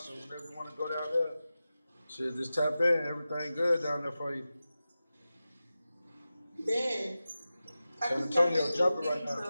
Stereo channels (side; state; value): both; inverted; correlation -0.94